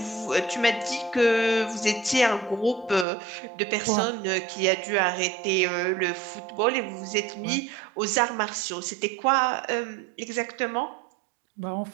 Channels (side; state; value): left; drops out; at 3.1 s